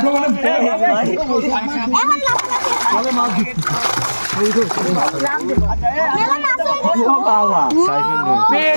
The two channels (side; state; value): both; inverted; correlation -1.00